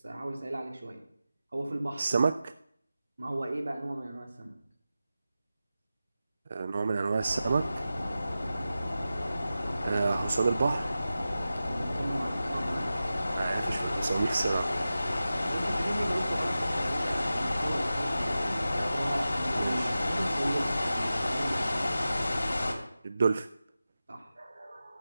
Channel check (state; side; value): inverted; both; correlation -0.94